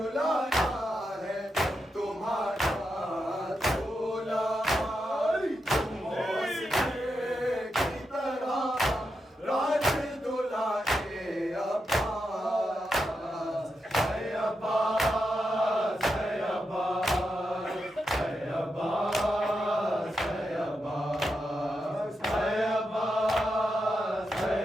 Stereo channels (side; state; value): both; normal; correlation 0.86